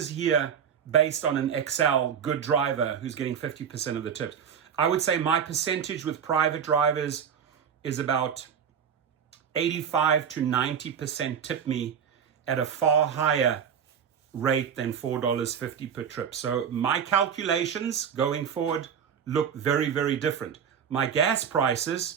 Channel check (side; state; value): left; quieter; 7.7 dB